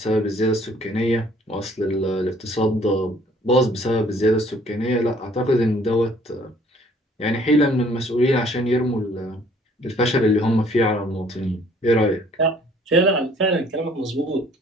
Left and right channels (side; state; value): both; normal; correlation 0.58